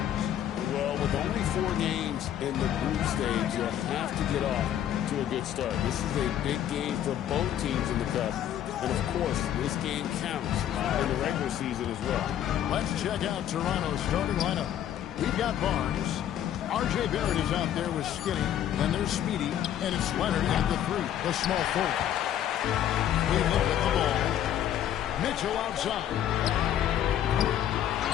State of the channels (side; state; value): right; quieter; 10.9 dB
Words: Well, with only 4 games in the group stage, you'll have to get off to a good start. This is a big game for both teams in the Cup. And, of course, this game counts in the regular season as well. Let's check out Toronto's starting lineup. We've got Barnes. R.J. Barrett is out there with Skinny. Then there's Speedy. And it's Leonard at the 3, the small forward. Cleveland with the ball. Mitchell outside.